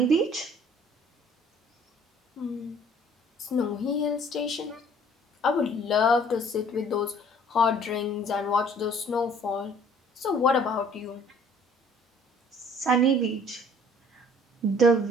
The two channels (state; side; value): normal; both; correlation 0.55